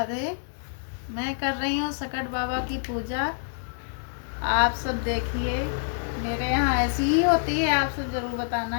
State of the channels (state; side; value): silent; right; digital silence